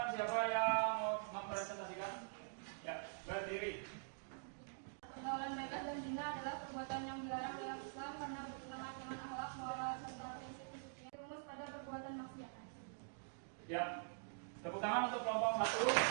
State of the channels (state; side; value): silent; left; digital silence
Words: siapa yang mau mempresentasikan? Ya, berdiri. Pergaulan bebas dan zina adalah perbuatan yang dilarang dalam Islam karena bertentangan dengan akhlak, moral, serta prinsip-prinsip yang rumus pada perbuatan maksiat. Ya, tepuk tangan untuk kelompok 1.